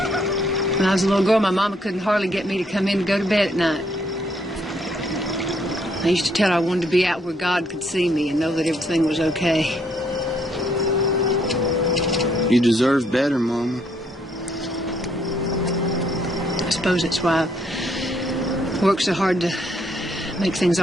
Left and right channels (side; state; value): both; normal; correlation 0.70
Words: When I was a little girl, my mama couldn't hardly get me to come in to go to bed at night. I used to tell her I wanted to be out where God could see me and know that everything was okay. You deserve better, Mama. I suppose that's why I work so hard to make things